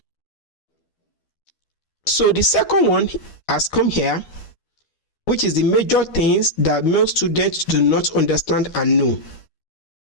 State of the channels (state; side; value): late; right; 12 ms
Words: So the second one has come here, which is the major things that most students do not understand and know.